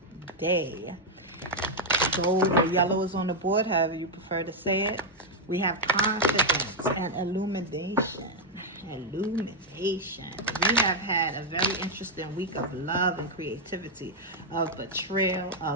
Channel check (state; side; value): normal; both; correlation 0.00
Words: Gold or yellow is on the board, however you prefer to say it. We have confidence and illumination. We have had a very interesting week of love and creativity, of betrayal,